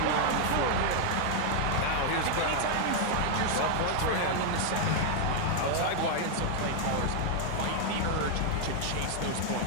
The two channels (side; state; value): both; different; correlation 0.00